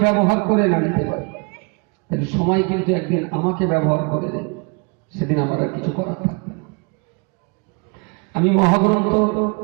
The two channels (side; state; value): left; quieter; 33.0 dB